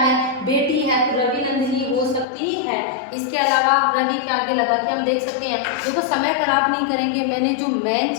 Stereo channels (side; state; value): right; drops out; at 2.2 s